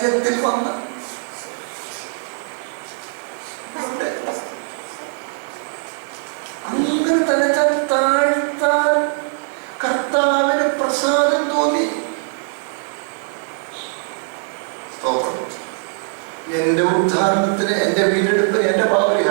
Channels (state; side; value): silent; left; 56 dB below the other